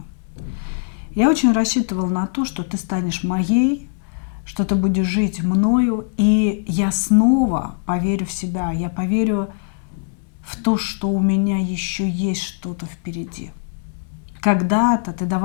Я очень рассчитывала на то, что ты станешь моей, что ты будешь жить мною, и я снова поверю в себя, я поверю в то, что у меня еще есть что-то впереди. Когда-то ты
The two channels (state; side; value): silent; right; digital silence